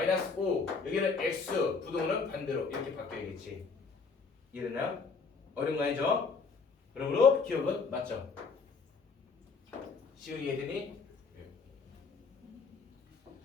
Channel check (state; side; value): quieter; right; 4.8 dB